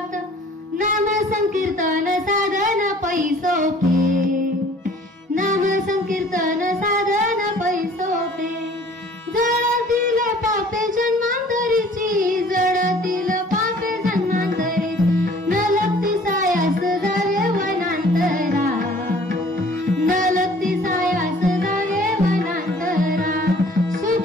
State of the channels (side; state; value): both; normal; correlation 0.52